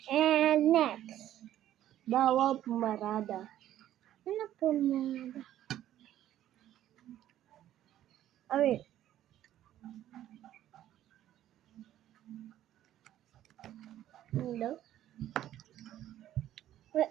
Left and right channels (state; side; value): quieter; left; 12.4 dB